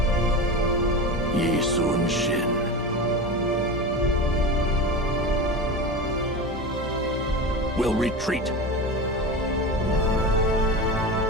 Yi Sun Shin. We'll retreat.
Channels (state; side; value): normal; both; correlation 0.26